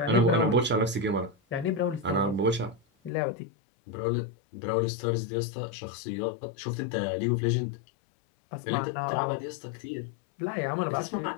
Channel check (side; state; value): right; drops out; at 3.1 s